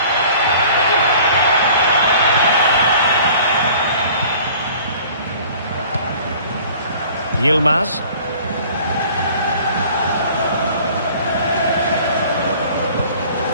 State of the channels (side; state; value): both; inverted; correlation -0.49